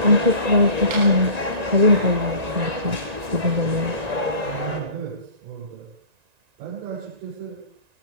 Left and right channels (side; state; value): left; late; 1.9 ms